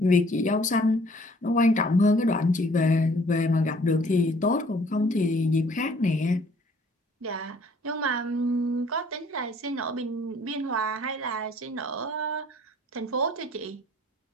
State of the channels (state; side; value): normal; both; correlation 0.58